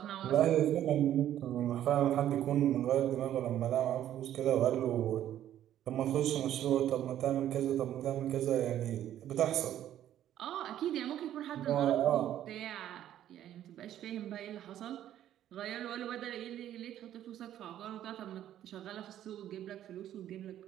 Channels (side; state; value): left; quieter; 11.6 dB